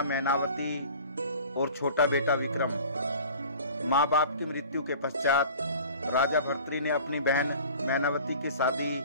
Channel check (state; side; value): inverted; both; correlation -0.44